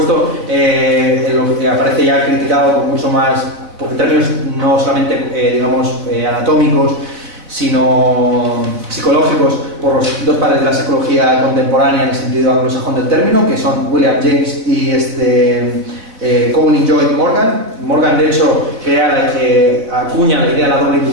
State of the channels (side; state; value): left; late; 4.1 ms